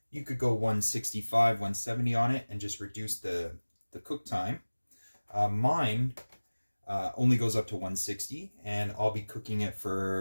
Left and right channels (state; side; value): inverted; both; correlation -1.00